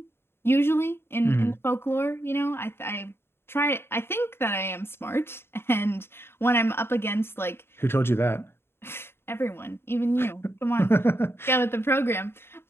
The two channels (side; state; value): right; late; 0.11 ms